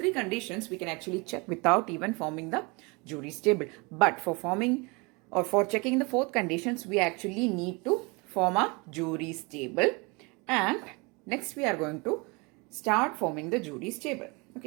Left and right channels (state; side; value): quieter; left; 28.2 dB